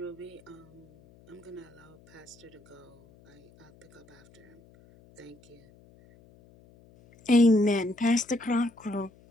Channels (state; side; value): noise; left; hum, 26 dB below the sound